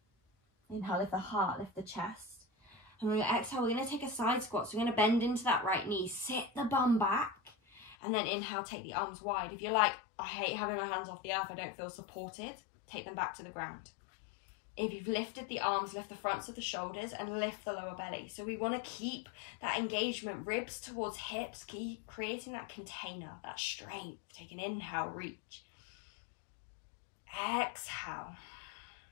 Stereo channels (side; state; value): right; drops out; at 8.0 s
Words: Inhale, lift the heart, lift the chest. And on your exhale, we're going to take a side squat. So we're going to bend into that right knee, sit the bum back, and then inhale, take the arms wide. If you're like, I hate having my hands off the earth, I don't feel supported, take them back to the ground. If you've lifted the arms, lift the fronts of the shoulders and lift the lower belly. So we want to keep that engagement, ribs towards hips, keep creating that container, that strength. Take an inhale, reach. Exhale.